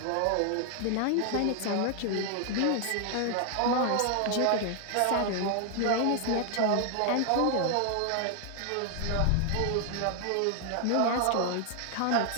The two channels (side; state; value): both; different; correlation 0.00